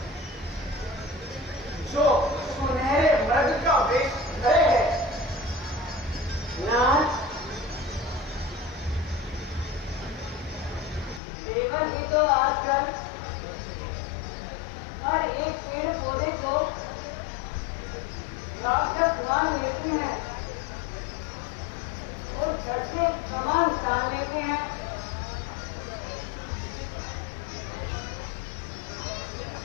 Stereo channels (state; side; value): drops out; right; at 11.2 s